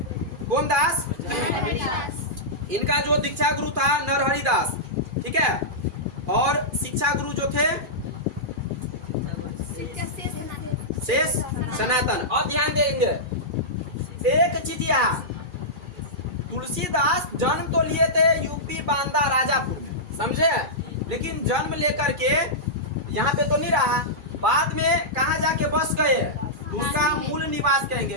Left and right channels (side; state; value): left; late; 2.4 ms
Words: कौन दास? इनका जो दीक्षा गुरु था नरहरि दास। ठीक है? और शिक्षा गुरु जो थे शेष सनातन। और ध्यान देंगे एक चीज, यहाँ तुलसीदास जन्म तो लिए थे यूपी बांदा राजापुर में। समझे? लेकिन जन्म लेकर के यहाँ पे तो नहीं रहा, बाद में कहाँ जाके बस गए? उनका मूल निवास